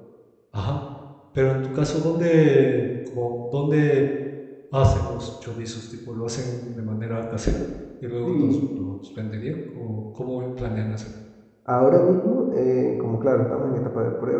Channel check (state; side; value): identical; both; correlation 1.00